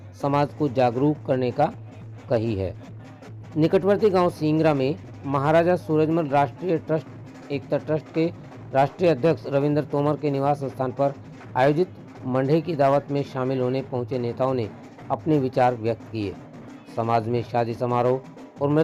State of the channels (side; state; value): both; identical; correlation 1.00